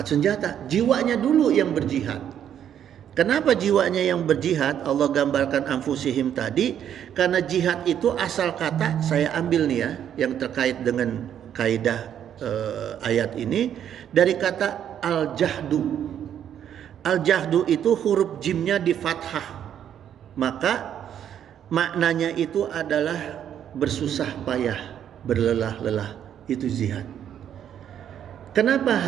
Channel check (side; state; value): left; quieter; 9.6 dB